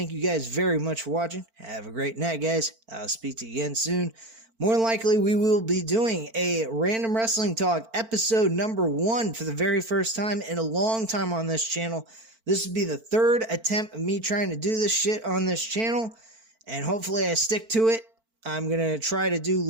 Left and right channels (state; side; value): late; left; 4.5 ms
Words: you guys very much for watching. Have a great night, guys. I'll speak to you again soon. More than likely, we will be doing a Random Wrestling Talk episode number 1 for the very first time in a long time on this channel. This will be the 3rd attempt of me trying to do this shit on this channel, and hopefully I stick to it. I'm going to try to do